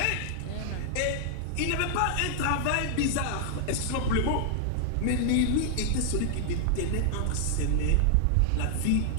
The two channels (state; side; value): different; both; correlation -0.01